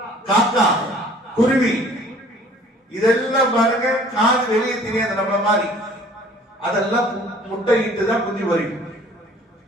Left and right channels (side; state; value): both; normal; correlation 0.53